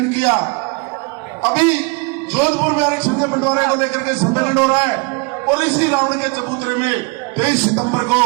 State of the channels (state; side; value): quieter; left; 30.9 dB